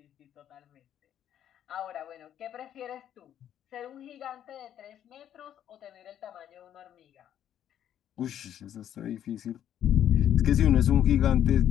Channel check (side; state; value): right; quieter; 10.5 dB